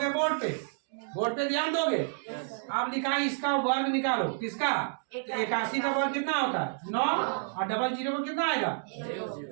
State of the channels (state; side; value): silent; left; digital silence